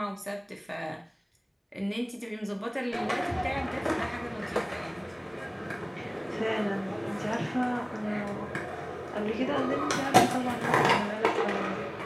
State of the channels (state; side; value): identical; both; correlation 1.00